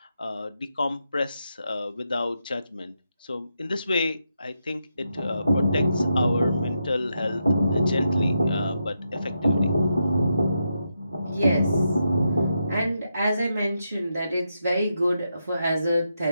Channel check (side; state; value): both; inverted; correlation -0.84